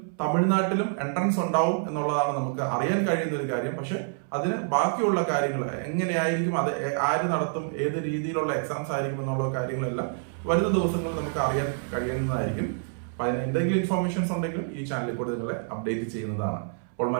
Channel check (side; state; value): left; silent; 60 dB below the other